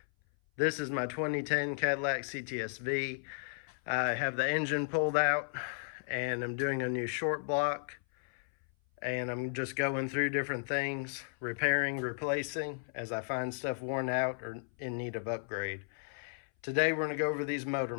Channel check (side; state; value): right; silent; 55 dB below the other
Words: this is my 2010 Cadillac CTS-V. I have the engine pulled out and I'm doing a new short block, and I'm just going through different things, repairing, replacing as I find stuff worn out or in need of upgrade. Today we're going to go over these motor